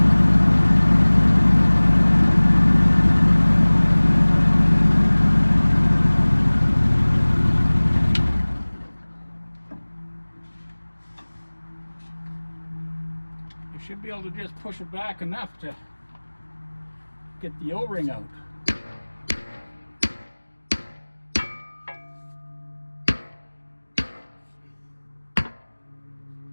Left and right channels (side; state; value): both; inverted; correlation -1.00